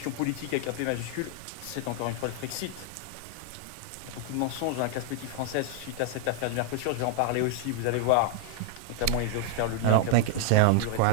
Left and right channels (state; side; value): different; both; correlation 0.00